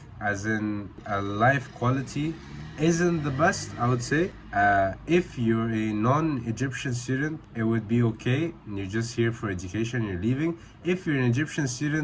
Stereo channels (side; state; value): both; identical; correlation 1.00